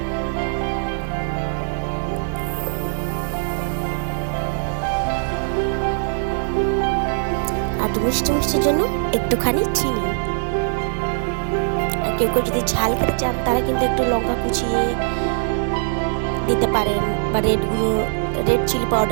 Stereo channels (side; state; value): left; silent; digital silence